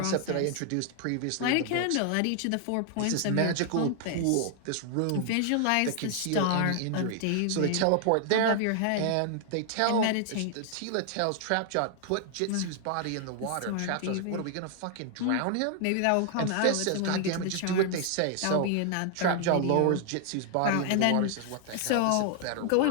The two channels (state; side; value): different; both; correlation 0.00